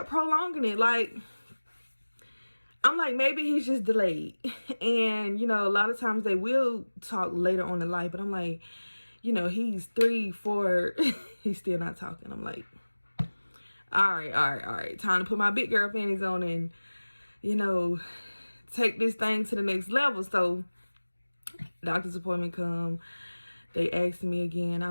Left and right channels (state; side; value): inverted; both; correlation -1.00